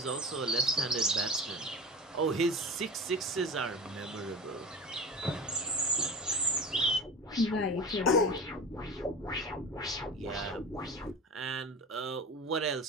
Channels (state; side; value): normal; both; correlation 0.32